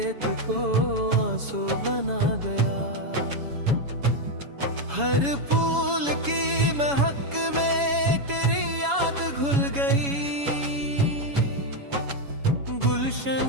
को आंसू बना गया। हर फूल की महक में तेरी याद घुल गई,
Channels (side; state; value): left; late; 7.1 ms